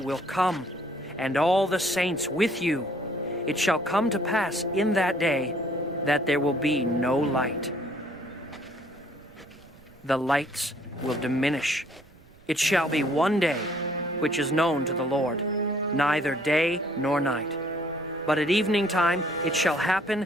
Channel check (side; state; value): right; noise; rumble, 26 dB below the sound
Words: come, and all the saints with you. It shall come to pass in that day that there will be no light. The lights will diminish. It shall be one day which is known to the Lord, neither day nor night. But at evening time it shall happen